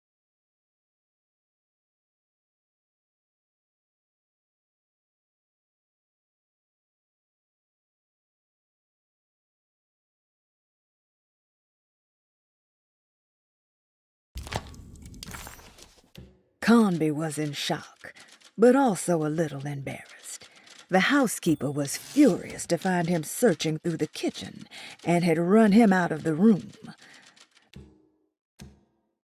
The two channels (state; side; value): identical; both; correlation 1.00